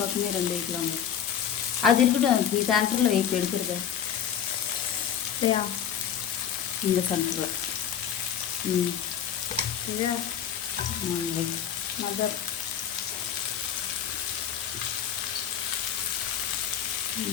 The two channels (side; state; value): right; quieter; 9.0 dB